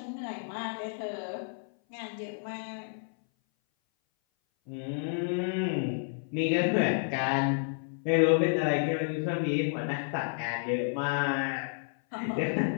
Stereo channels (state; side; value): silent; right; 57 dB below the other